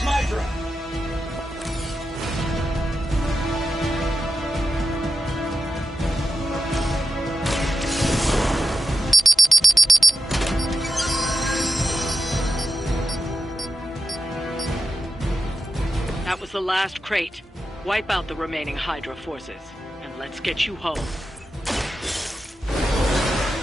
That was the last crate. Wipe out the remaining Hydra forces, and let's get you home.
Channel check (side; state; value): both; normal; correlation 0.90